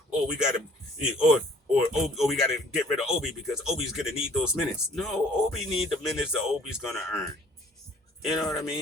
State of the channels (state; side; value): normal; both; correlation 0.55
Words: or we got to, or we got to get rid of Obi, because Obi's gonna need those minutes. No, Obi need the minutes that Obi's gonna earn. You know what I